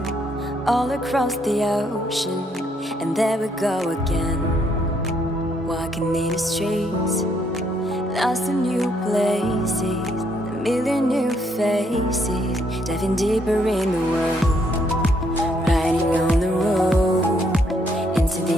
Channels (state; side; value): normal; both; correlation 0.71